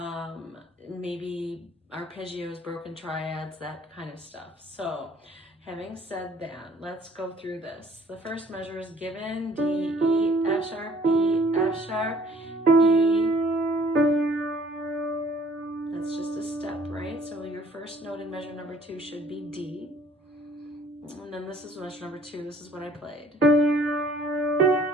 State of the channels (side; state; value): both; normal; correlation 0.57